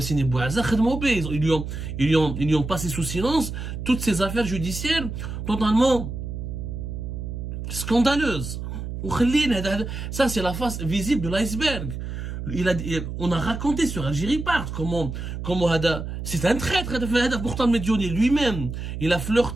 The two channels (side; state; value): right; noise; hum, 6 dB below the sound